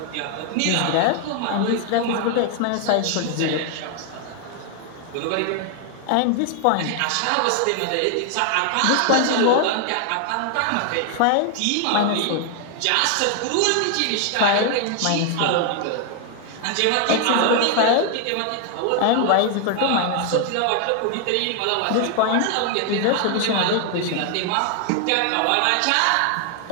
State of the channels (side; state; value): both; different; correlation 0.00